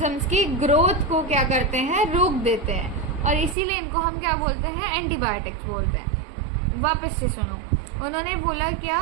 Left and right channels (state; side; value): drops out; left; at 3.6 s